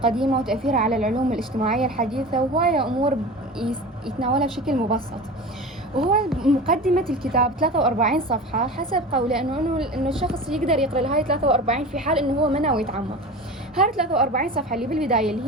وتأثيرها على العلوم الاجتماعية الحديثة، وهواية أمور يتناولها بشكل مبسط. وهو مقدمة الكتاب 43 صفحة حسب قوله إنه الشخص يقدر يقرأ هاي 43 في حال إنه هو ما ناوي يتعمق. هاي 43 صفحة اللي بالبداية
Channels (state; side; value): normal; both; correlation 0.33